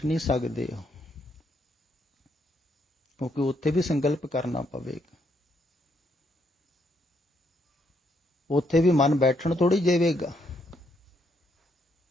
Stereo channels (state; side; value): normal; both; correlation 0.74